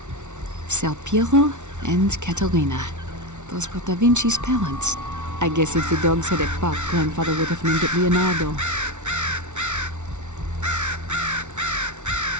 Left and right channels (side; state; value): left; late; 0.84 ms